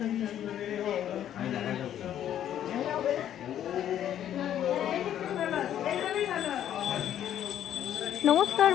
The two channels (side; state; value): right; quieter; 10.7 dB